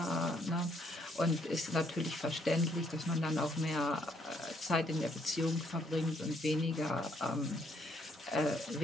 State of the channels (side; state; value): both; normal; correlation 0.70